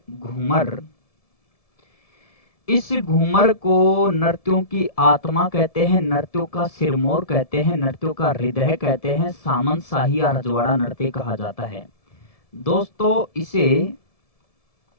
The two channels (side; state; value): right; late; 1.7 ms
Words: घूमर। इस घूमर को नृत्यों की आत्मा कहते हैं, नृत्यों का सिरमौर कहते हैं, नृत्यों का हृदय कहते हैं, सामंत शाही या रजवाड़ा नृत्य कहा जाता है। दोस्तों, इसे